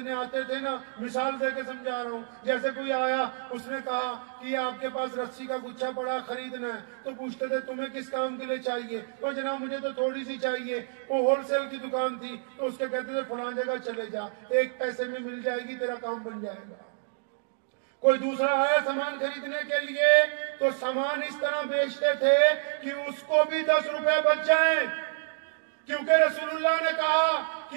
آتے تھے نا، مثال دے کے سمجھا رہا ہوں، جیسے کوئی آیا اس نے کہا کہ آپ کے پاس رسی کا گچھا پڑا خریدنا ہے، تو پوچھتے تھے تمہیں کس کام کے لیے چاہیے؟ وہ جناب مجھے تو تھوڑی سی چاہیے. وہ ہول سیل کی دکان تھی، تو اس کے کہتے تھے فلاں جگہ چلے جا، 1 پیسے میں مل جائے گی، تیرا کام بن جائے گا. کوئی دوسرا آیا سامان خریدنے کے لیے تو سامان اس طرح بیچتے تھے کہ اس کو بھی 10 روپے بچ جائیں، کیونکہ رسول اللہ نے کہا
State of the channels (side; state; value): left; silent; digital silence